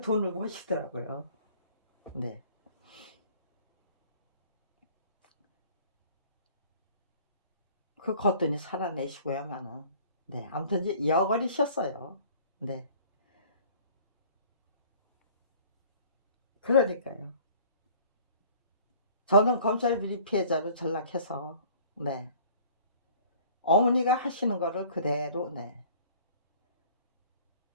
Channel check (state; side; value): inverted; both; correlation -0.51